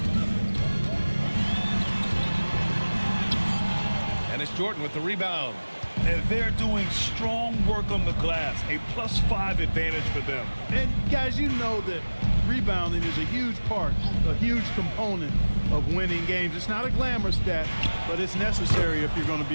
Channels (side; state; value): both; inverted; correlation -1.00